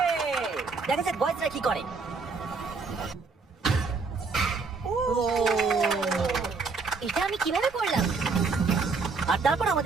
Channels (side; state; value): left; quieter; 4.5 dB